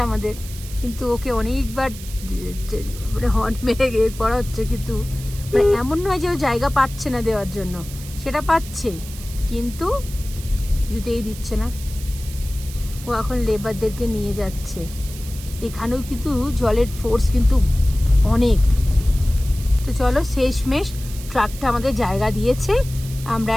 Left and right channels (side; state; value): right; noise; hiss, 15 dB below the sound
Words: আমাদের, কিন্তু ওকে অনেকবার হর্ন মেরে করা হচ্ছে, কিন্তু এমন নয় যে ও জায়গা পাচ্ছে না দেওয়ার জন্য, সেটা পাচ্ছে, কিন্তু কিছুতেই দিচ্ছে না। ও এখন লেবারদেরকে নিয়ে যাচ্ছে। এখানেও কিন্তু জলের ফোর্স কিন্তু অনেক। তো চলো শেষমেশ ট্রাকটা আমাদের জায়গা দিয়েছে, আমরা